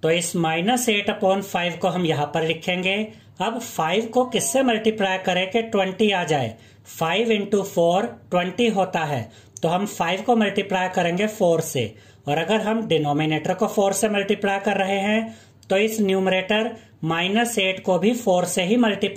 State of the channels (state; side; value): identical; both; correlation 1.00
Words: तो इस -8/5 को हम यहां पर लिखेंगे। अब 5 को किससे मल्टीप्लाई करें कि 20 आ जाए? 5 इंटू 4 20 होता है, तो हम 5 को मल्टीप्लाई करेंगे 4 से। और अगर हम डिनोमिनेटर को 4 से मल्टीप्लाई कर रहे हैं तो इस न्यूमरेटर -8 को भी 4 से ही